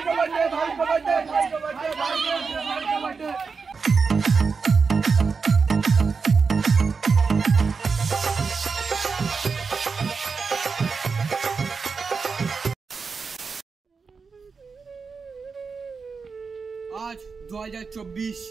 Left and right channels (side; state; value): left; quieter; 5.0 dB